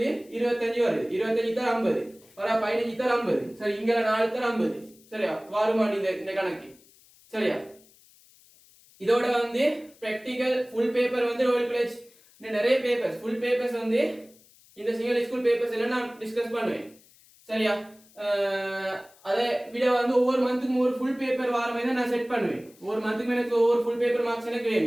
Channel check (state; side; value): noise; left; hiss, 28 dB below the sound